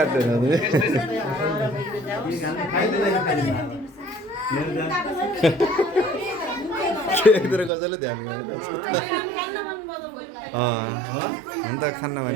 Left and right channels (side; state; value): left; drops out; at 7.7 s